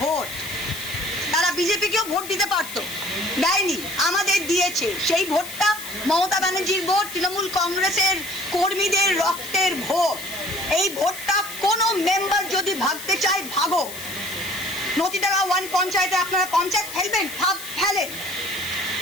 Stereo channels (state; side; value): noise; left; hiss, 11 dB below the sound